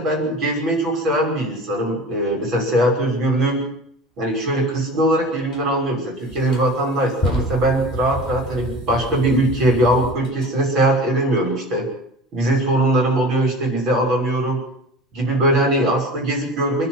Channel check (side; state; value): both; normal; correlation 0.37